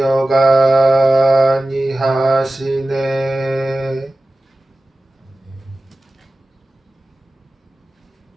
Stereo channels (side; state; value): both; normal; correlation 0.95